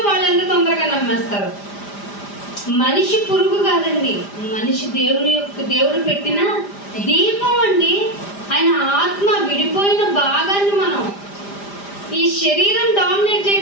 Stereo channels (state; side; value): late; right; 5.0 ms